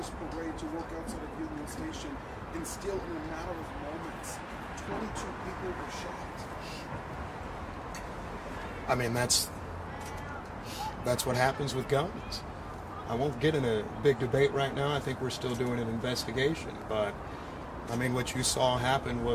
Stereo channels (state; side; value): identical; both; correlation 1.00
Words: parade, to work outside of Union Station, and still in a matter of moments, 22 people were shot. I mean, that's what happens with guns. I won't get in a big debate right now. I think we're still doing an investigation, but I mean, what you saw happen